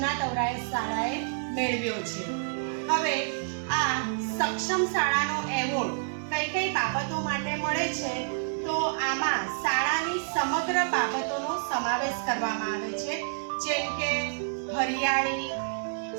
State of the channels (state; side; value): silent; left; 59 dB below the other